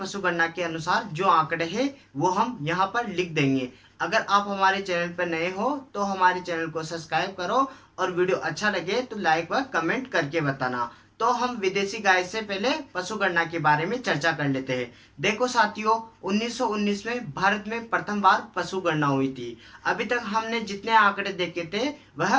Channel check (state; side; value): identical; both; correlation 1.00